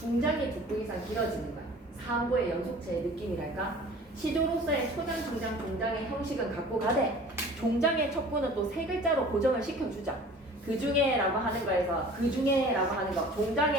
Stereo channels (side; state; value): both; normal; correlation 0.45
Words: 두 부 이상 길어지는 거야. 3부의 연속체의 느낌이랄까? 시조로서의 초장, 중장, 종장의 형식은 갖고 가되 종장의 첫 부는 또 세 글자로 고정을 시켜주자. 그 중에라고 하는 거에서 그 중에라고 하는 거